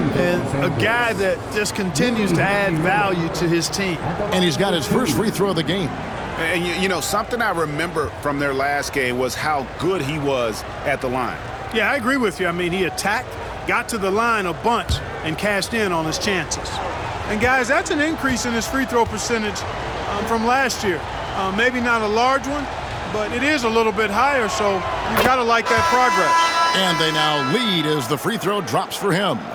a guy that just continues to add value to his team. And he's got his first free throw of the game. And you know, something I remember from their last game was how good he was at the line. Yeah, I agree with you. I mean, he attacked, got to the line a bunch, and cashed in on his chances. And guys, that's an increase in his free throw percentage from last year. Maybe not a large one, but it is a little bit higher, so you got to like that progress. And they now lead as the free throw drops for him.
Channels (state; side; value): identical; both; correlation 1.00